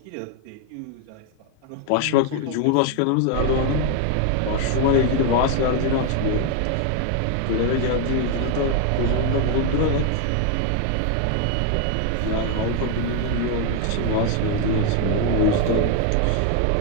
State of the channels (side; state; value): both; different; correlation 0.01